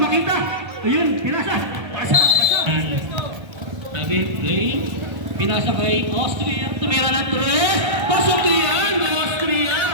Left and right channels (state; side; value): late; left; 1.3 ms